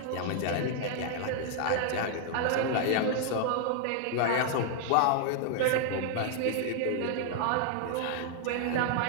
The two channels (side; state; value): both; different; correlation 0.00